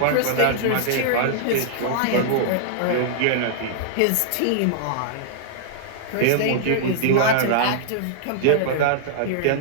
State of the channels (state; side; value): different; both; correlation -0.01